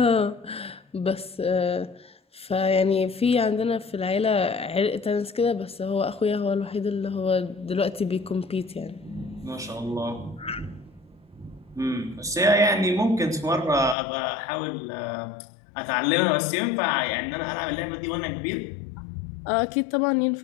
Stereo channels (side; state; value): right; drops out; at 14.0 s